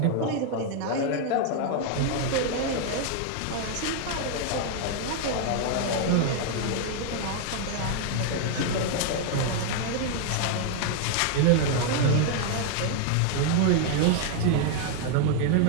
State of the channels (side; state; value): both; different; correlation 0.00